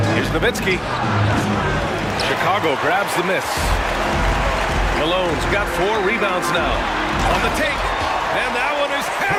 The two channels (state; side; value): identical; both; correlation 1.00